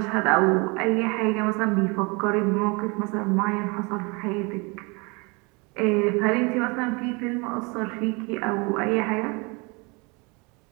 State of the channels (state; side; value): quieter; left; 28.9 dB